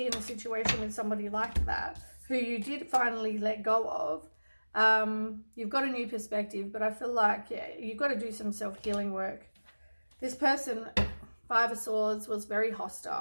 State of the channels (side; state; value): both; inverted; correlation -1.00